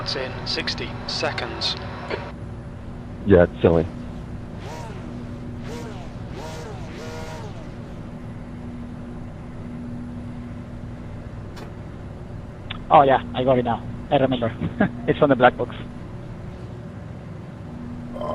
in 60 seconds. Yeah, it's silly. Oh yeah, I got it now. I remember. It's on the black box.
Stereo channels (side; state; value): both; identical; correlation 1.00